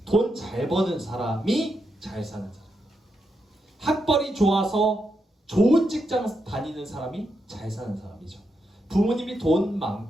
돈 잘 버는 사람이 잘 사는 사람. 학벌이 좋아서 좋은 직장 다니는 사람이 잘 사는 사람이죠. 부모님이 돈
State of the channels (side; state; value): both; normal; correlation 0.83